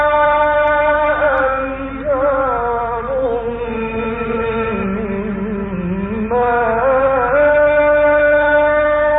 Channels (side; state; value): both; identical; correlation 1.00